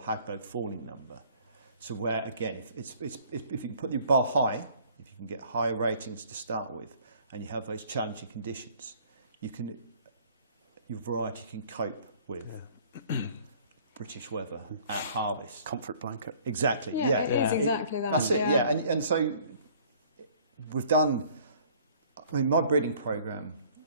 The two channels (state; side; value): inverted; both; correlation -0.55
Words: Hagberg falling number. So where, again, if you can put the bar high, if you can get higher ratings to start with, and you have those challenging conditions, your variety can cope with British weather at harvest. Comfort blanket. Exactly. Yeah, it is exactly that. That's it. Yeah, and so we've done. I mean, my breeding program